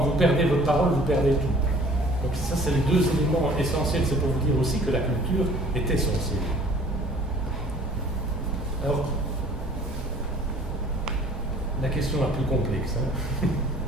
perdez votre parole, vous perdez tout. Donc ça, c'est les deux éléments essentiels. C'est pour vous dire aussi que la culture est essentielle. Alors, la question la plus complexe. Hein.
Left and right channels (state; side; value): normal; both; correlation 0.51